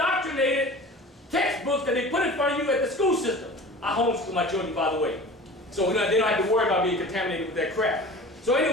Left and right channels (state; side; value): normal; both; correlation 0.39